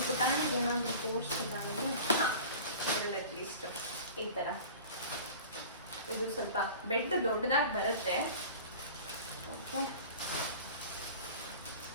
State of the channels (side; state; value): both; inverted; correlation -0.39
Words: ಪುಟಾಣಿಗೆ ಏನಾದರೂ ತೋರಿಸಿಲ್ಲ ಅಂದರೆ ಇದರಲ್ಲಿ ಅಟ್ಲೀಸ್ಟ್ ಈ ಥರ. ಇದು ಸ್ವಲ್ಪ ಬೆಡ್ ದೊಡ್ಡದಾಗಿ ಬರುತ್ತೆ. ಓಕೆ,